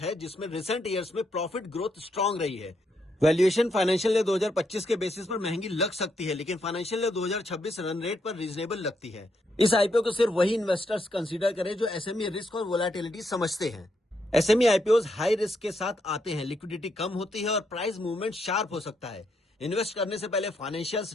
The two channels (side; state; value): both; normal; correlation 0.78